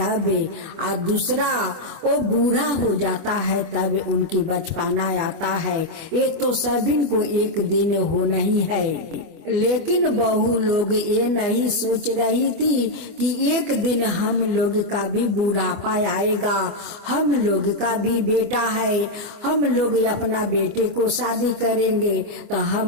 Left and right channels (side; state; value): left; late; 25 ms